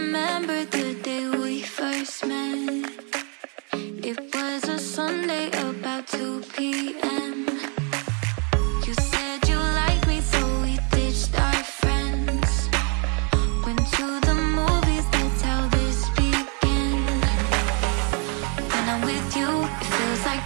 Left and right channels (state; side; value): quieter; left; 37.6 dB